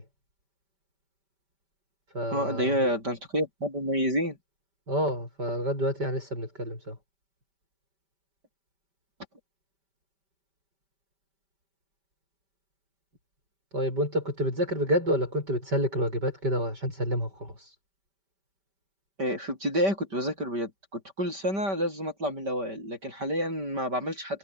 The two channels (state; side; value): late; left; 5.1 ms